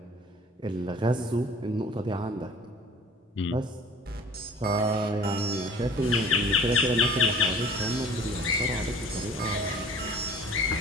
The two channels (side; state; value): both; normal; correlation 0.46